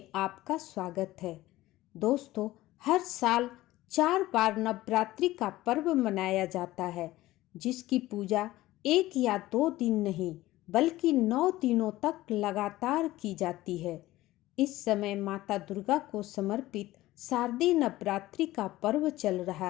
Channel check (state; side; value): quieter; right; 16.8 dB